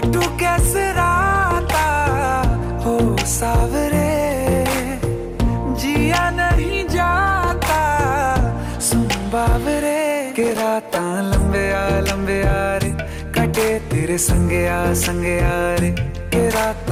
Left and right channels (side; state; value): both; identical; correlation 1.00